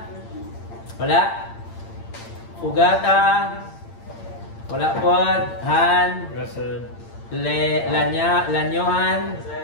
wala. Fugata, wala po. Han, Lanyohan,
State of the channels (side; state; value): right; late; 8.8 ms